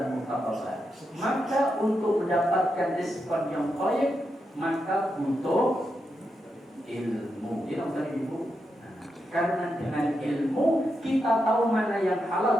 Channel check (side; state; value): both; normal; correlation 0.85